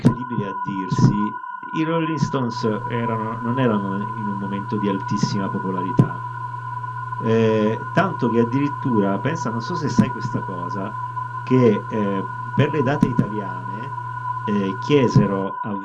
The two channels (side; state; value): both; identical; correlation 1.00